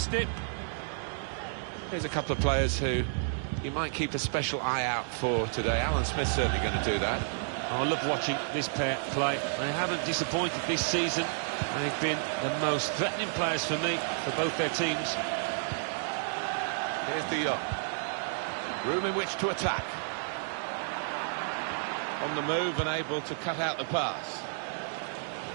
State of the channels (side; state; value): left; silent; digital silence